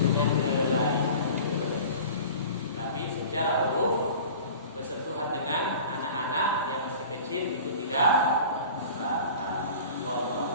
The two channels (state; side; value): inverted; both; correlation -0.41